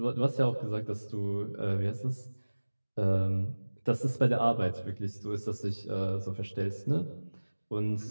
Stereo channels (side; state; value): both; inverted; correlation -1.00